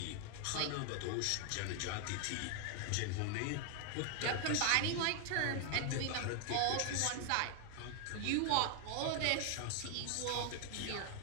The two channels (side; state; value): both; different; correlation 0.00